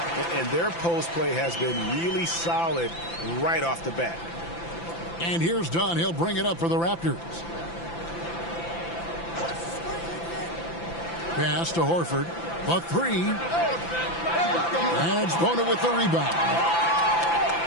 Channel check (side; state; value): right; late; 5.9 ms